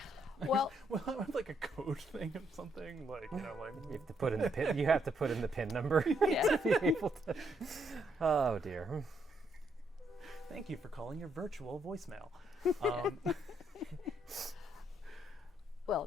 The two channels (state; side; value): normal; both; correlation 0.74